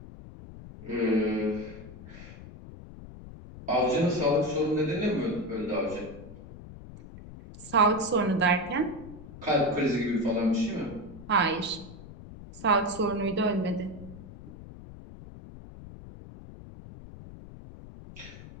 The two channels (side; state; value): left; noise; rumble, 15 dB below the sound